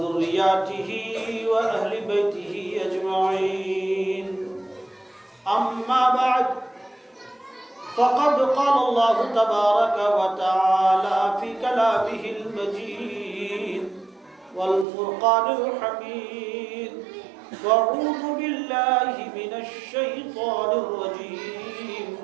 وأهل بيته أجمعين. أما بعد، فقد قال الله تبارك وتعالى في كلامه المجيد والفرقان الحميد: فأعوذ بالله من الشيطان الرجيم،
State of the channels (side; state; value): left; drops out; at 14.9 s